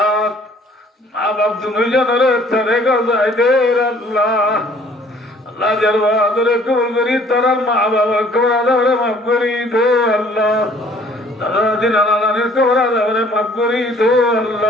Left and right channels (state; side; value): normal; both; correlation 0.57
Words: মা বাপ দুজনের তারে গায় দে আল্লাহ আল্লাহ যার বাদরে কবুল করি তারা মা বাবা কবর আদাবরে মাফ করি দো আল্লাহ দাদা দিন নানির কবর আদাবরে মাফ করি দো